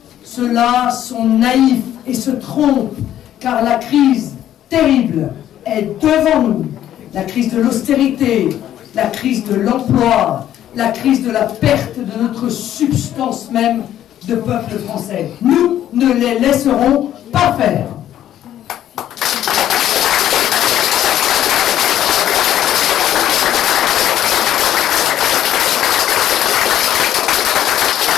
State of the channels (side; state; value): right; quieter; 11.6 dB